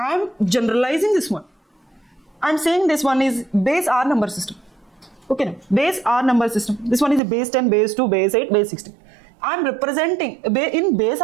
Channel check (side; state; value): left; drops out; at 7.2 s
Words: am generalizing this one. I am saying this one is base R number system. Okay, now base R number system. This one is a base 10, base 2, base 8, base 16. I am representing in base